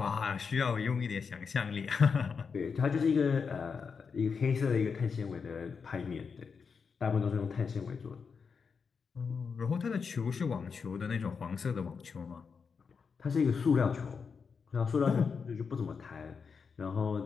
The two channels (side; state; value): right; quieter; 5.7 dB